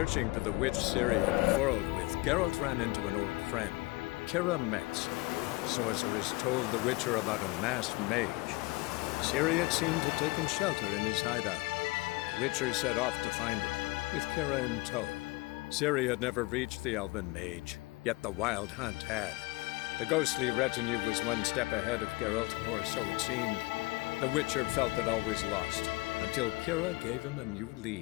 for the witch Ciri had quarreled with, Geralt ran into an old friend, Kira Metz. Sorceress told the Witcher about a masked mage. Ciri had seemed to have taken shelter in his hideout. The Witcher set off to find it, with Kira in tow. Ciri had never reached the elven mage, yet the wild hunt had. The ghostly retinue was one step ahead of Geralt, or so it seemed. The Witcher felt that all was lost, until Kira gave him a new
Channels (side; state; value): right; quieter; 23.2 dB